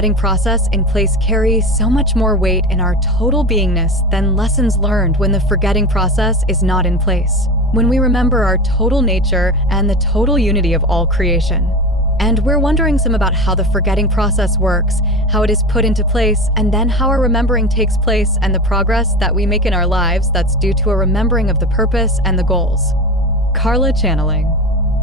process in place carry so much more weight in our total beingness than lessons learned when the forgetting process is not in place, when we remember our total nature and the total unity of all creation. And we're wondering some about how the forgetting process works, how it is put into place, and then how our remembering takes place and the progress that we make in our lives that's due to a remembering of the purpose and the goals. Carla channeling.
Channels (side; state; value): both; normal; correlation 0.27